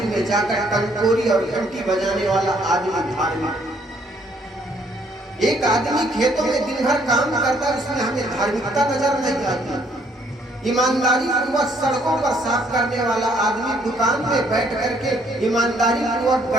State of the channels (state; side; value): normal; both; correlation 0.66